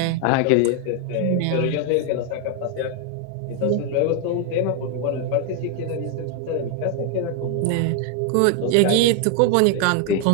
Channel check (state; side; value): different; both; correlation 0.00